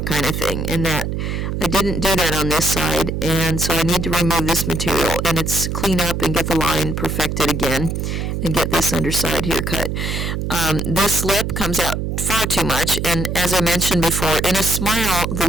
kind of thing, and that I didn't do that on this side, and so I need to remove this material, and it's clean up and get the line perfected again, and get this underside here cut. This lip comes out far too much, and as I mentioned before, in a smile, the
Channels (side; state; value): right; noise; hum, 2 dB below the sound